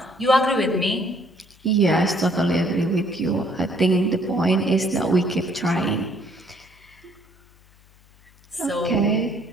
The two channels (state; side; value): noise; left; hum, 29 dB below the sound